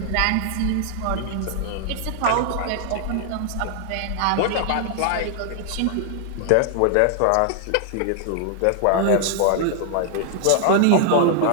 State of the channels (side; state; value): both; different; correlation 0.00